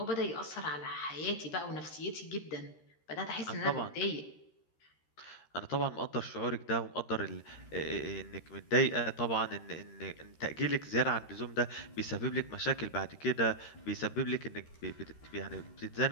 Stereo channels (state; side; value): late; right; 13 ms